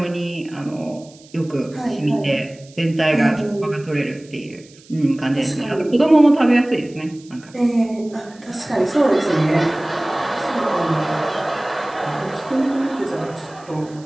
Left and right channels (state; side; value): noise; right; hiss, 25 dB below the sound